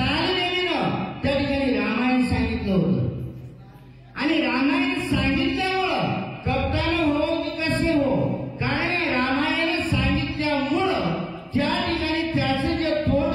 त्या ठिकाणी रामायण सांगितलं होतं. आणि रामायण सांगितल्यामुळं कप्तान हो की कसे हो, कारण रामायण सांगितल्यामुळं त्या ठिकाणी त्याचं जे तोंड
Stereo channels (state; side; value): identical; both; correlation 1.00